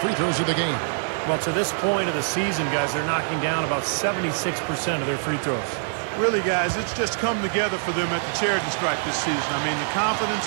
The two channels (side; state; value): left; silent; digital silence